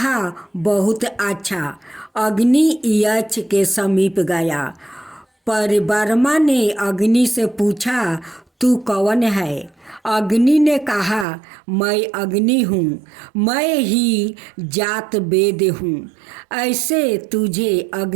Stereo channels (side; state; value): left; drops out; at 11.2 s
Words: बहुत अच्छा। अग्नि यक्ष के समीप गया। परब्रह्मा ने अग्नि से पूछा, तू कौन है? अग्नि ने कहा, मैं अग्नि हूँ, मैं ही जात वेद हूँ। ऐसे तुझे